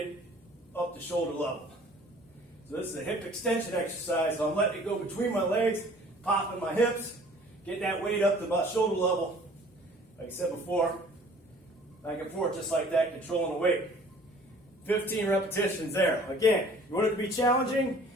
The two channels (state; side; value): normal; both; correlation 0.52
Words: up to shoulder level. So this is a hip extension exercise. So I'm letting it go between my legs, popping my hips, getting that weight up to about shoulder level. Like I said before, back and forth just like that, controlling the weight. 15 repetitions there. Again, you want it to be challenging